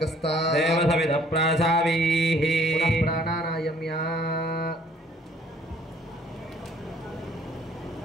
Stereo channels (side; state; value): both; normal; correlation 0.59